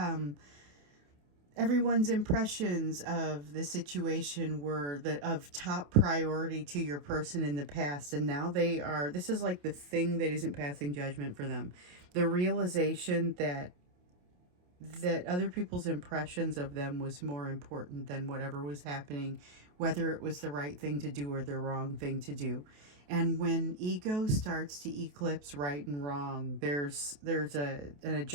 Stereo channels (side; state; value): left; late; 28 ms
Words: everyone's impressions of the situation were of top priority to your person in the past, and now they are, this is like the thing that isn't passing judgment for them. The realization that other people's impressions of them was more important than whatever was happening, whether it was the right thing to do or the wrong thing to do. And when ego starts to eclipse right and wrong, there's an